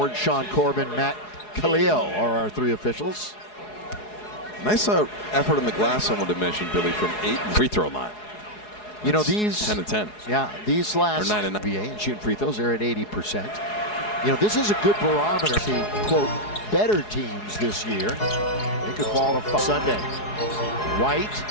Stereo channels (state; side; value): late; right; 4.8 ms